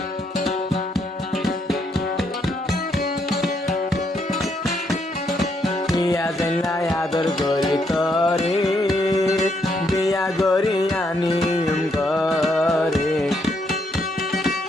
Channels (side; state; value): both; normal; correlation 0.75